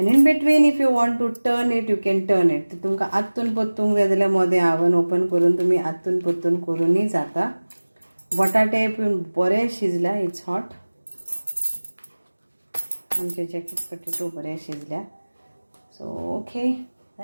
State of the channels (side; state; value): both; inverted; correlation -1.00